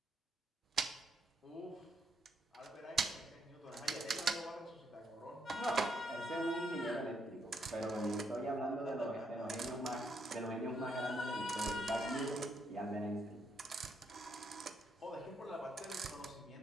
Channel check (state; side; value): normal; both; correlation 0.76